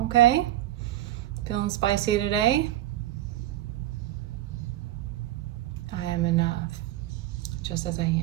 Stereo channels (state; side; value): quieter; left; 14.1 dB